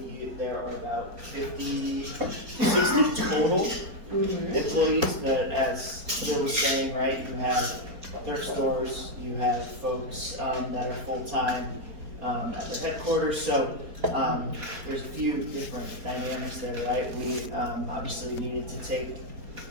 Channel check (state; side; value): late; left; 4.3 ms